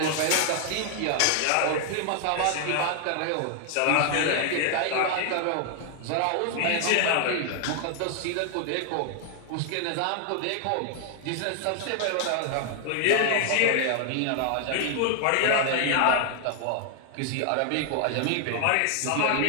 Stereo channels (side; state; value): both; different; correlation 0.00